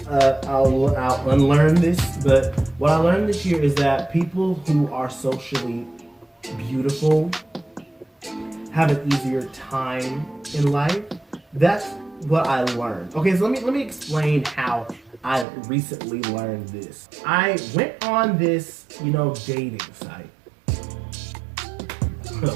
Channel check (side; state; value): left; drops out; at 15.5 s